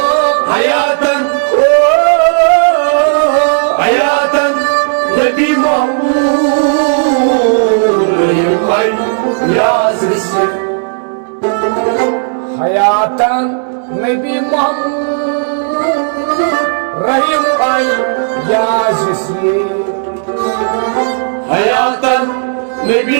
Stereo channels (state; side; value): silent; left; digital silence